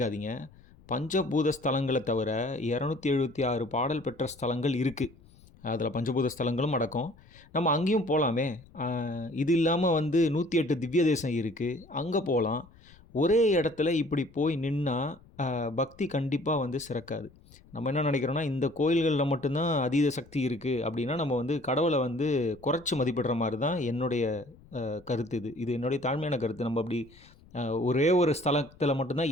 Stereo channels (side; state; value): left; noise; rumble, 25 dB below the sound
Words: பஞ்சபூத ஸ்தலங்களை தவிர 276 பாடல் பெற்ற ஸ்தலங்கள் இருக்குது. அதில் பஞ்சபூத ஸ்தலங்களும் அடக்கம். நம்ம அங்கேயும் போகலாமே. இது இல்லாமல் வந்து 108 திவ்ய தேசம் இருக்குது, அங்கே போகலாம். ஒரே இடத்துல இப்படி போய் நின்னா பக்தி கண்டிப்பாக வந்து சிறக்காது. நம்ம என்ன நினைக்கிறோன்னா, இந்த கோயில்களில் மட்டும்தான் அதீத சக்தி இருக்குது அப்படின்னா நம்ம வந்து கடவுளை வந்து குறைச்சி மதிப்பிடுற மாதிரி தான் என்னுடைய கருத்து. இது என்னுடைய தாழ்மையான கருத்து. நம்ம அப்படி ஒரே ஒரு ஸ்தலத்தில்